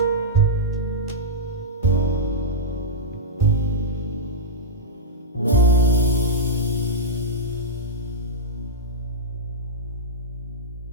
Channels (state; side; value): normal; both; correlation -0.09